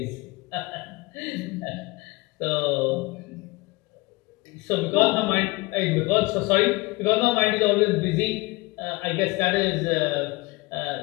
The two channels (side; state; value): right; quieter; 23.5 dB